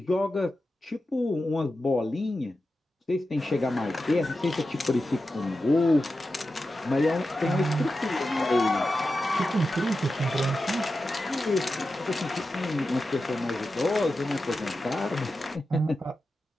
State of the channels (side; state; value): both; normal; correlation 0.91